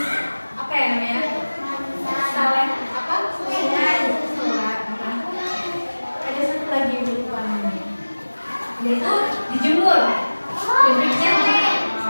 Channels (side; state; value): both; inverted; correlation -1.00